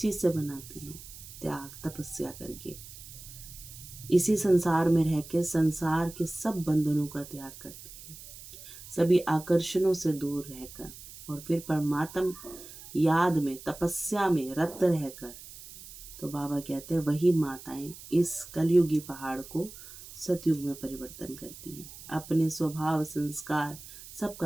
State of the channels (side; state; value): right; noise; hiss, 16 dB below the sound